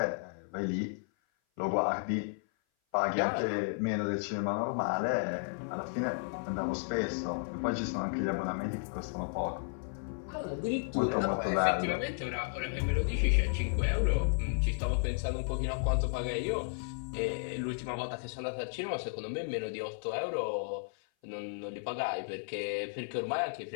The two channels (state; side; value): silent; right; 55 dB below the other